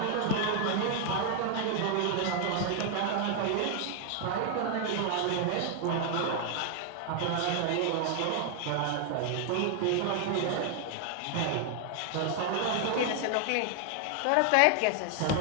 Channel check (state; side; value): different; both; correlation 0.00